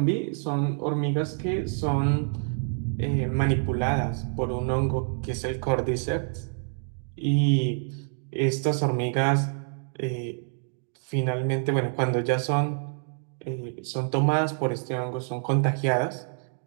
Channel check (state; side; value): silent; left; 60 dB below the other